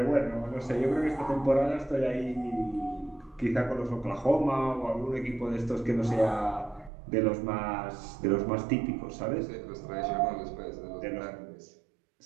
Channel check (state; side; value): drops out; left; at 6.9 s